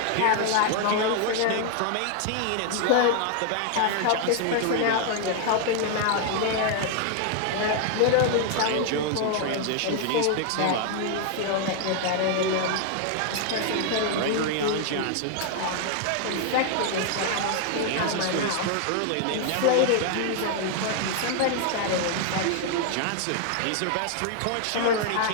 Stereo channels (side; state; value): both; different; correlation 0.00